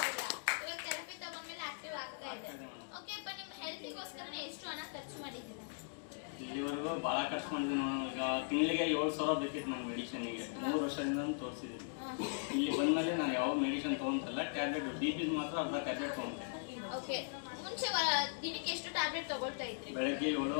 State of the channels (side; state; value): right; silent; digital silence